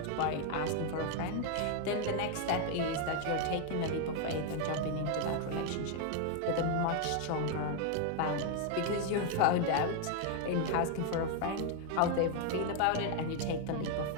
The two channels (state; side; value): different; both; correlation 0.01